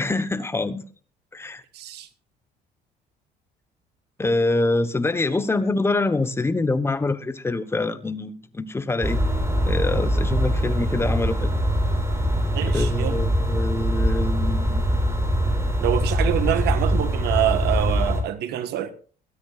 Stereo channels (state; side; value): normal; both; correlation 0.75